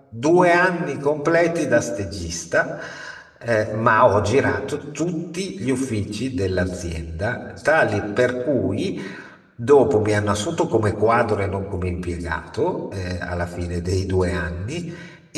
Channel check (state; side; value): identical; both; correlation 1.00